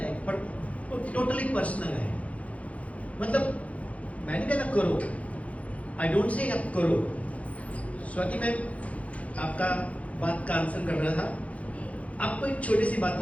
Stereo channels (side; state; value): right; late; 0.066 ms